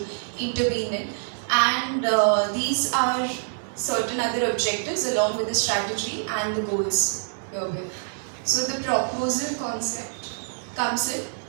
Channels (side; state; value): left; silent; digital silence